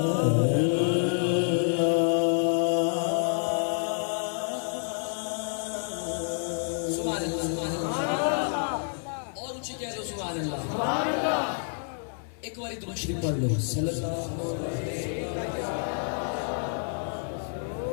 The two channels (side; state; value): right; silent; digital silence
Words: ایک بار درود شریف پڑھ لو صلی اللہ